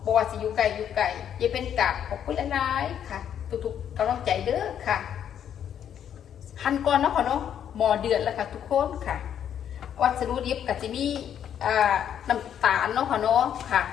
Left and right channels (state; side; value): quieter; right; 9.3 dB